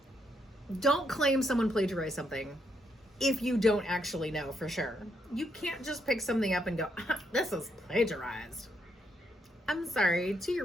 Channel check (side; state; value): both; normal; correlation 0.76